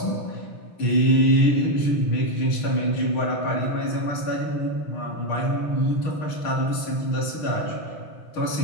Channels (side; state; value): right; late; 6.5 ms